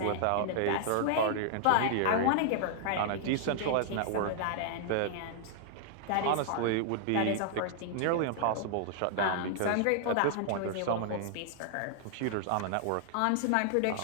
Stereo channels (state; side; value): different; both; correlation -0.01